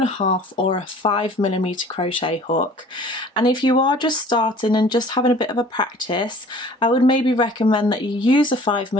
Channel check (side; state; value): both; normal; correlation 0.49